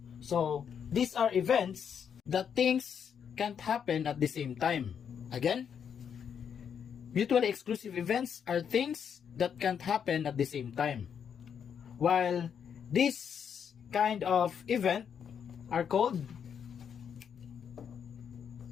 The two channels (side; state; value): right; quieter; 7.7 dB